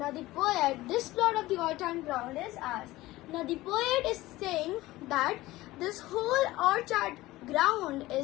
this plot of the orchard ground is ours. Now the poet is saying that this whole orchard ground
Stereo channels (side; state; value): right; quieter; 18.0 dB